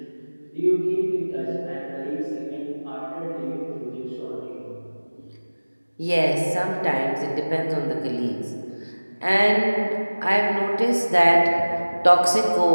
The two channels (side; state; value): both; inverted; correlation -1.00